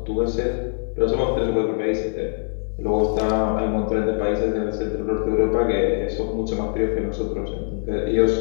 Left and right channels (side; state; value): right; silent; digital silence